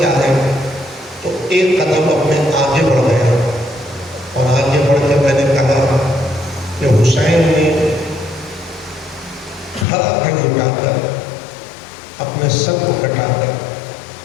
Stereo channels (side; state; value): right; drops out; at 9.9 s